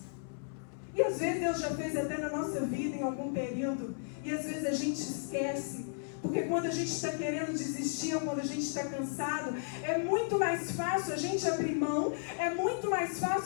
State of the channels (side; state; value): right; silent; 55 dB below the other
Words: E às vezes Deus já fez até na nossa vida em algum período. E às vezes a gente esquece. Porque quando a gente está querendo desistir, ou quando a gente está cansado, é muito mais fácil a gente abrir mão, é muito mais